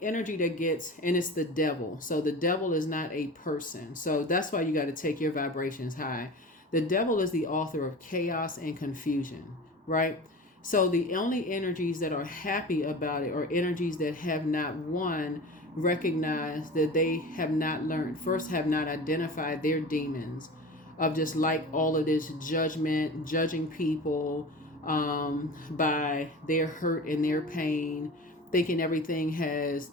energy that gets, and it's the devil. So the devil is not a person. So that's why you got to take your vibrations high. The devil is the author of chaos and confusion, right? So the only energies that are happy about it are energies that have not, one, recognized that they have not learned, first have not identified their demons of just like all of this judgment, judging people by their hurt and their pain, thinking everything has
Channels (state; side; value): normal; both; correlation 0.34